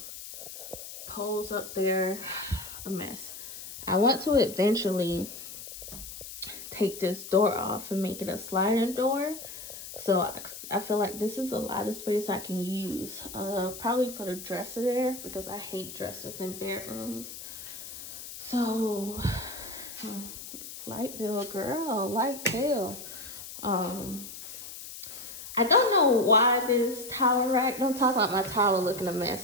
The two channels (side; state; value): left; noise; hiss, 11 dB below the sound